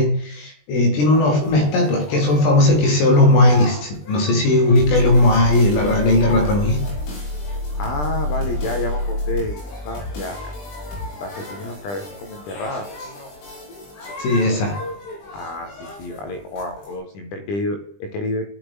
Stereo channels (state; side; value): late; right; 20 ms